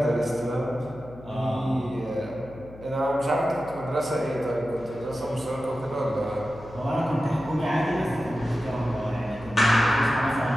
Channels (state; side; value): noise; left; hum, 18 dB below the sound